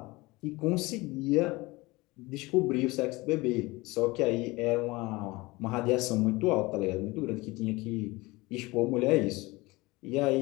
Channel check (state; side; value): quieter; right; 22.3 dB